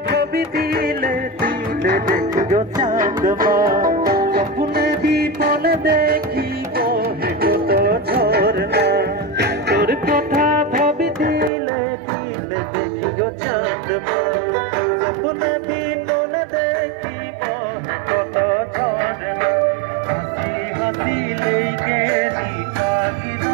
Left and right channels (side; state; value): left; drops out; at 11.5 s